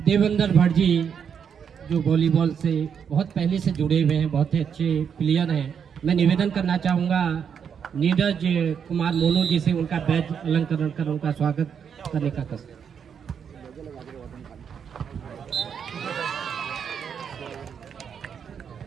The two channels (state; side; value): quieter; left; 7.4 dB